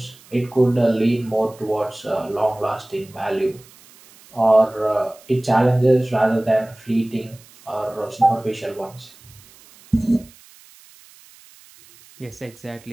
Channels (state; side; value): noise; right; hiss, 25 dB below the sound